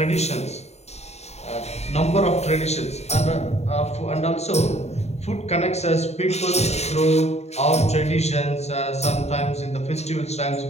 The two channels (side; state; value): right; late; 0.32 ms